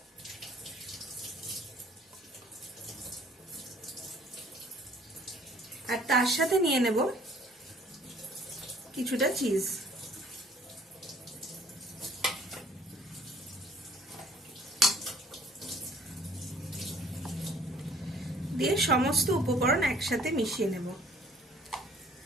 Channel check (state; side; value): normal; both; correlation 0.56